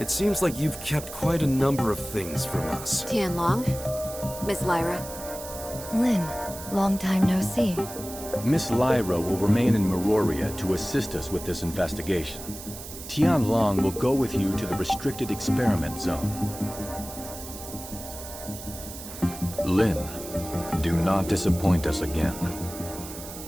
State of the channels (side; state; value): right; noise; hiss, 12 dB below the sound